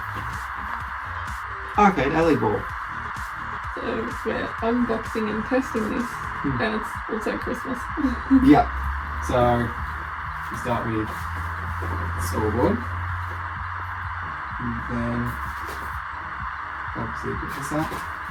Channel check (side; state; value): both; identical; correlation 1.00